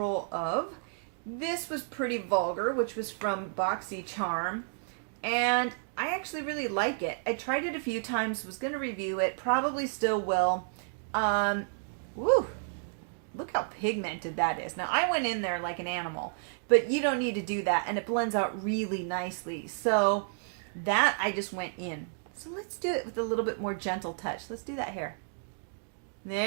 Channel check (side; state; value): left; silent; digital silence